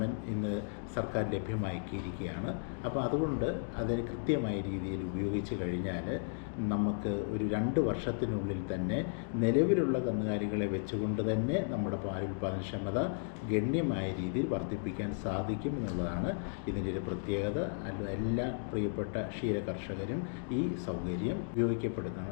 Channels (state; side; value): silent; right; digital silence